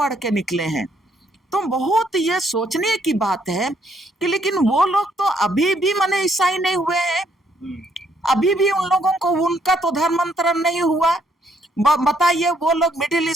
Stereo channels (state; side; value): normal; both; correlation 0.70